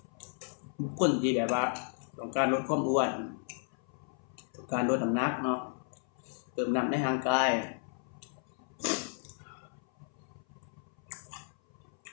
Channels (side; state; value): right; silent; 55 dB below the other